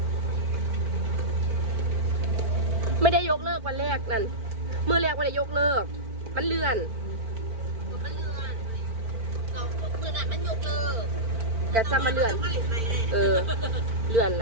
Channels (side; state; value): left; late; 4.5 ms